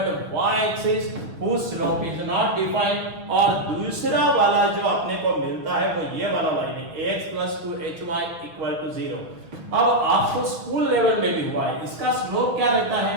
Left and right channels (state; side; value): late; left; 6.2 ms